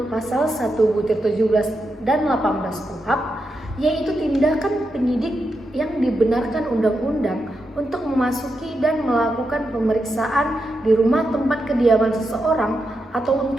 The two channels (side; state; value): both; normal; correlation 0.86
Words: pasal 1/17 dan 18 KUHP yaitu tindakan penyidik yang dibenarkan undang-undang untuk memasuki dan melakukan pemeriksaan di rumah tempat kediaman seseorang atau